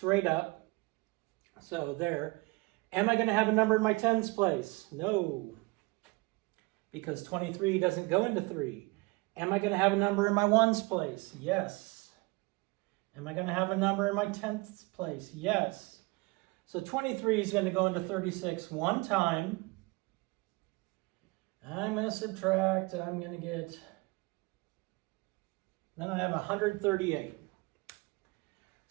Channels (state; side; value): quieter; left; 25.4 dB